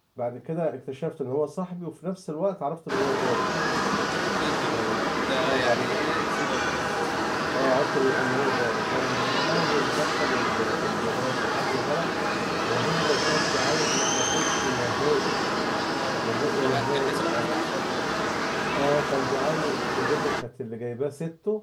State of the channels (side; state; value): both; identical; correlation 1.00